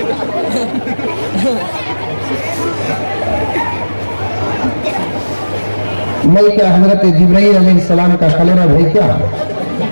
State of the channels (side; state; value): both; inverted; correlation -1.00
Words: میں کیا حضرت جبرائیل علیہ السلام کا خلیرہ بھائی کیا؟